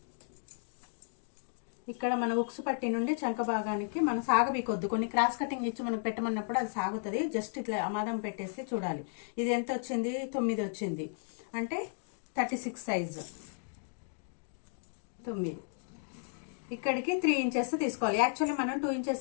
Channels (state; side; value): silent; right; digital silence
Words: ఇక్కడ మన ఉక్సు పట్టి నుండి చంక భాగానికి మనం సాగబీకొద్దు. కొన్ని క్రాస్ కటింగ్ ఇచ్చి మనం పెట్టమన్నప్పుడు అది సాగుతుంది. జస్ట్ ఇట్లా అమాదం పెట్టేసి చూడాలి. ఇది ఎంత వచ్చింది? 9 వచ్చింది. అంటే 36 సైజు 9. ఇక్కడికి 3 ఇంచెస్ తీసుకోవాలి. యాక్చువల్లీ మనం 2